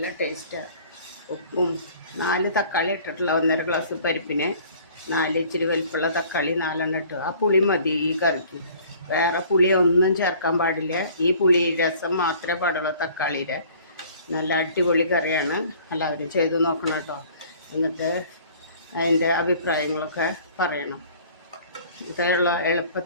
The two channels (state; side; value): inverted; both; correlation -0.51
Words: ടേസ്റ്റാണ്. ഉപ്പും 4 തക്കാളി ഇട്ടിട്ടുള്ള 1.5 ഗ്ലാസ് പരിപ്പിന് 4 ഇച്ചിരി വലിപ്പമുള്ള തക്കാളി 4 ഇട്ടു. ആ പുളി മതി ഈ കറിക്ക്. വേറെ പുളി ഒന്നും ചേർക്കാൻ പാടില്ല. ഈ പുളി രസം മാത്രമേ പാടുള്ളൂ തക്കാളിയുടെ. നല്ല അടിപൊളി കറിയാണ്. എല്ലാവരും ചെയ്ത് നോക്കണം കേട്ടോ. എന്നിട്ട് അതിൻ്റെ അഭിപ്രായങ്ങളൊക്കെ പറയണം. ഇതുള്ള